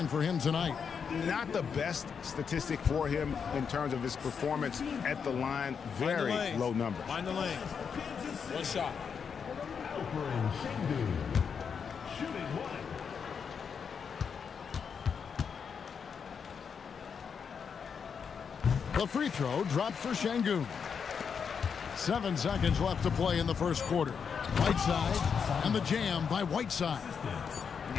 for him tonight. Not the best statistic for him in terms of his performance at the line. Very low number. Find the lane. 1 shot. The free throw dropped for Şengün. 7 seconds left to play in the first quarter. Whiteside and the jam by Whiteside.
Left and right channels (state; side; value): quieter; right; 6.5 dB